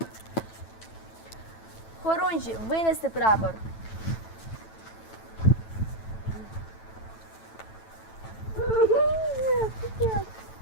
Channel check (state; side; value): late; right; 9.1 ms